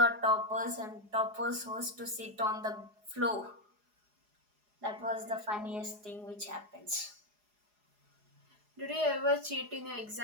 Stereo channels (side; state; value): left; late; 4.8 ms